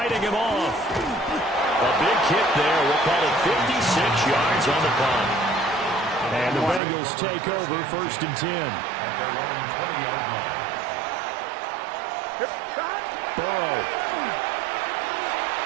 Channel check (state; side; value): drops out; left; at 6.8 s